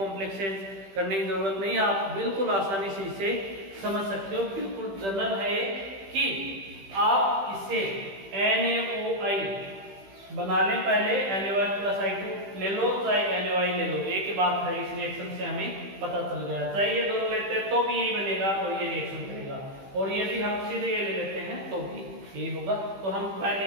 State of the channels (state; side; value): late; left; 15 ms